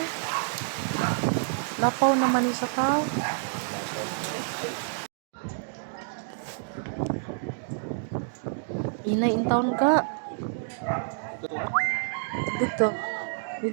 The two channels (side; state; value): left; silent; digital silence